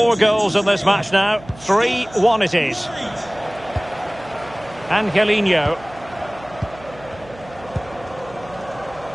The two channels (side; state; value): right; noise; hum, 20 dB below the sound